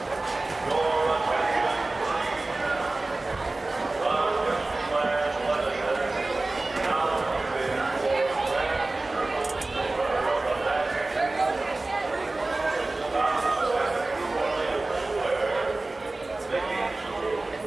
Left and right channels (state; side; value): quieter; left; 3.1 dB